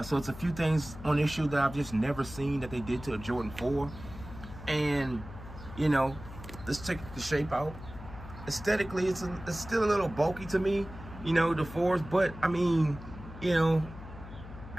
So it's a few things on this shoe that I've just never seen that they did to a Jordan 4. And, you know, let's check the shape out. Aesthetically, it's still a little bulky to me, you know, the 4s. But, I mean, you know,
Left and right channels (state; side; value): noise; left; hum, 13 dB below the sound